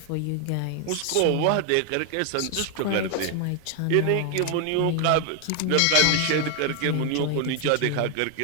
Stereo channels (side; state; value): both; different; correlation 0.00